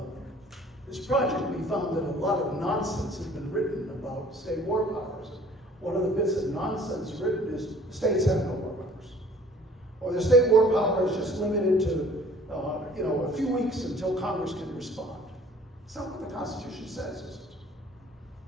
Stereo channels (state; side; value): normal; both; correlation 0.53